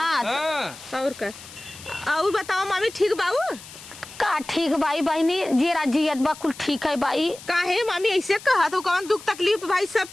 और का और बताओ मामी ठीक बाबू का। ठीक भाई बहनी जीरा जियत बा कुल ठीक है भाई। काहे मामी ऐसे कहा तो कौन दुख तकलीफ भाई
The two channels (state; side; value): noise; left; hiss, 17 dB below the sound